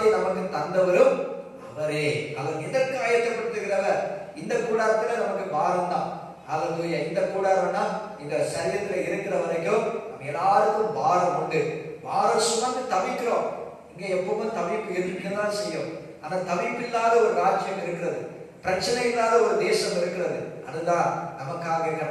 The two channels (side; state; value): both; identical; correlation 1.00